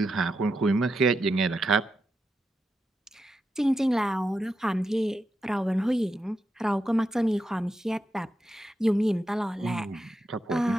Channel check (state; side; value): normal; both; correlation 0.86